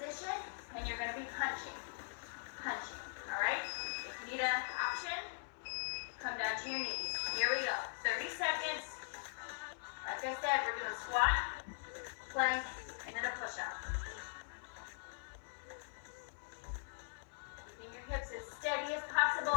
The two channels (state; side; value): silent; right; 50 dB below the other